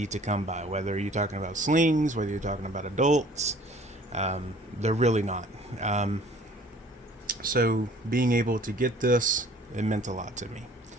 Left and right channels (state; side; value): normal; both; correlation 0.52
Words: to come by, whether you're talking about slings, whether you're talking about adults. They're really not. So being able to get this, it meant a lot to me.